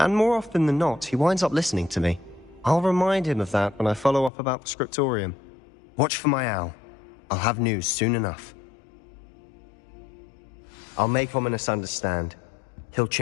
more often than not, he winds up listening to me. I'll remind him of that when I follow up about the scriptorium. Watch for my owl. I'll have news soon enough. I'll make Ominous understand. He'll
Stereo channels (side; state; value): right; drops out; at 4.3 s